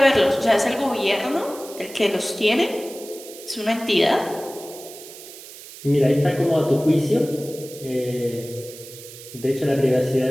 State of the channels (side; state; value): right; noise; hiss, 16 dB below the sound